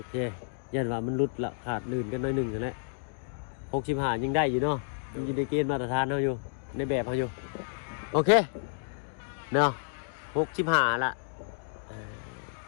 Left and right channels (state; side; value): silent; right; digital silence